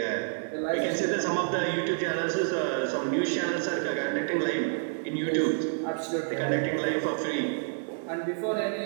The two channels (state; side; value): silent; left; 59 dB below the other